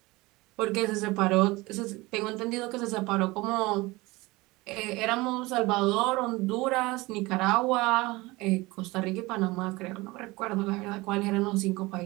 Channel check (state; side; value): quieter; left; 21.9 dB